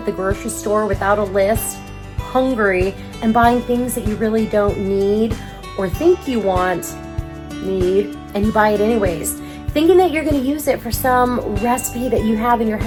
the grocery store without a list, hungry, and buying things that you really don't need or think you need, and you buy it anyways, thinking that you're going to use it for some recipe that you have in your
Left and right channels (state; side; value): identical; both; correlation 1.00